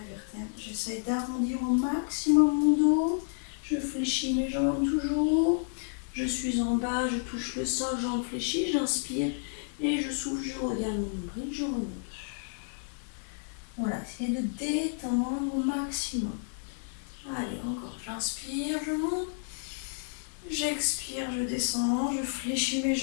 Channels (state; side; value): silent; right; 57 dB below the other